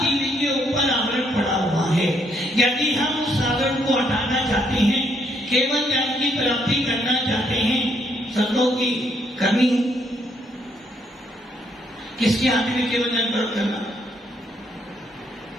के ऊपर आवरण पड़ा हुआ है। यदि हम उस आवरण को हटाना चाहते हैं, केवल ज्ञान की प्राप्ति करना चाहते हैं, सब लोग की करनी है। किसके हाथ में केवल ज्ञान प्राप्त करना?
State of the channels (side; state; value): both; normal; correlation 0.72